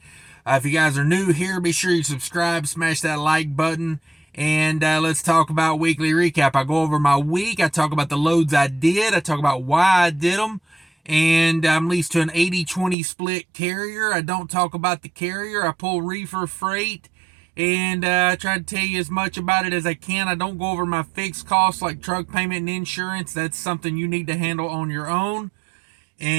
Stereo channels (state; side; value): drops out; left; at 13.0 s